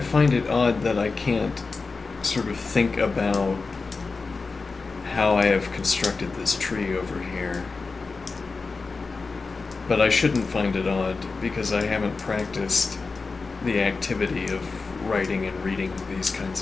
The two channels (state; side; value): quieter; right; 4.2 dB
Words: it odd that I can't sort of think about how I have constructed this tree over here. But I shouldn't find it odd because I haven't practiced the activity of writing and reading these